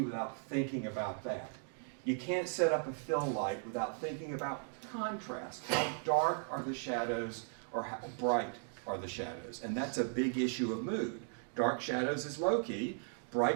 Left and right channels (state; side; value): silent; left; 53 dB below the other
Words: without thinking about that. You can't set up a fill light without thinking about contrast. How dark are the shadows or how bright are the shadows? And that's a big issue of mood. Dark shadows is low key,